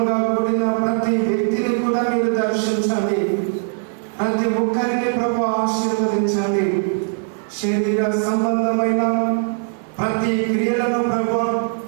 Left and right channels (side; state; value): left; silent; digital silence